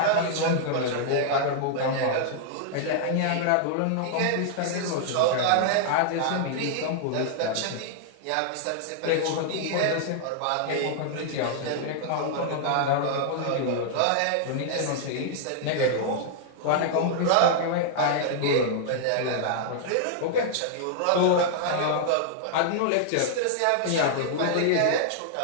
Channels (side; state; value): both; different; correlation -0.01